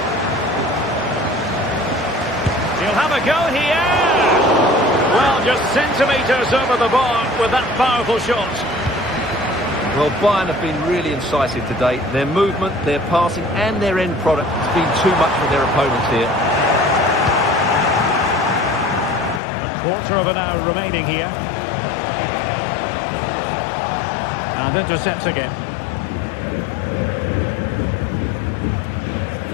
He'll have a go here. Well, just centimetres over the bar with that powerful shot. Well, Bayern have been really incisive today. Their movement, their passing and their end product has been too much for their opponents here. A quarter of an hour remaining here. And intercepts again.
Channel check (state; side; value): drops out; right; at 19.4 s